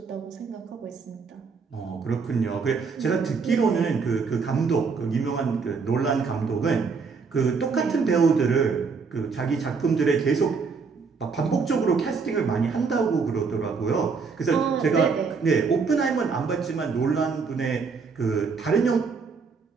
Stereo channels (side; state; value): left; quieter; 5.1 dB